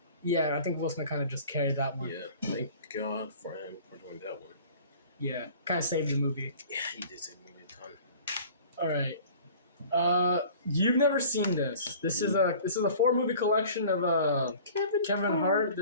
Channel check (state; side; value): inverted; both; correlation -0.46